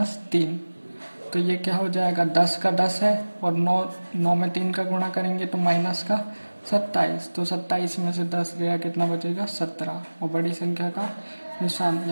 तो ये क्या हो जाएगा 10 का 10 है और 9 में 3 का गुणा करेंगे तो माइनस का 27, तो 27 में से 10 गया, कितना बचेगा 17 और बड़ी संख्या का निशान,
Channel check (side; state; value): both; inverted; correlation -1.00